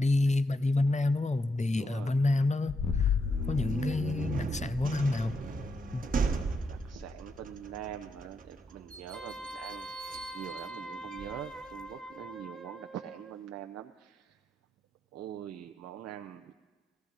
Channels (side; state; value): both; normal; correlation 0.82